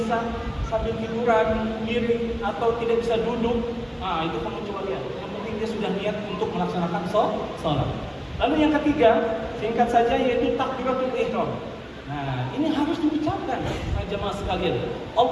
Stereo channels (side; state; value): both; identical; correlation 1.00